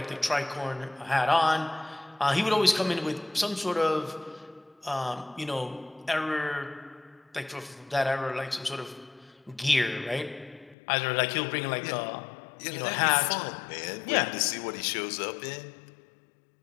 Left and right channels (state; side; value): drops out; right; at 10.8 s